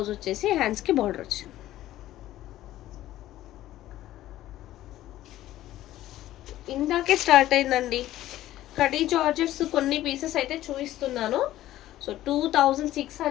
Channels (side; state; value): right; quieter; 14.2 dB